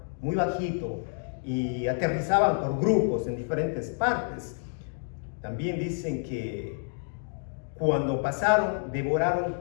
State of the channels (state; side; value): silent; right; 59 dB below the other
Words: muy bajito y aterrizaban por grupos en diferentes partes. También dicen que cuando pasaron, devoraron